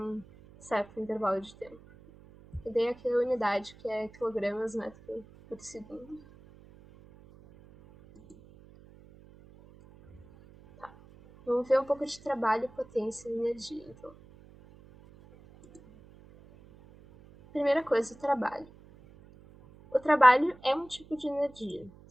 certo intervalo de tempo. E daí aqui a unidade, que é quilogramas metro por segundo. Tá. Vamos ver um pouco de trabalho, potência e energia, então. Primeira coisa, o trabalho. O trabalho é um tipo de energia,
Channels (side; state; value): right; noise; hum, 23 dB below the sound